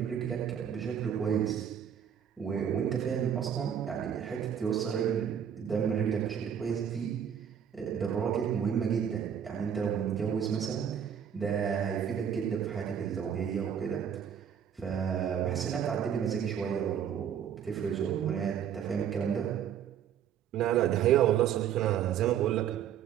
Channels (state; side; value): quieter; left; 8.7 dB